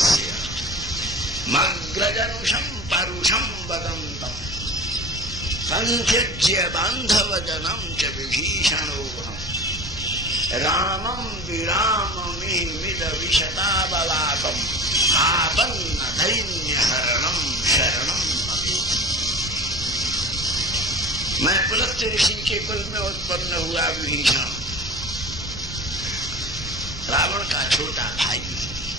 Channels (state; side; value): normal; both; correlation 0.36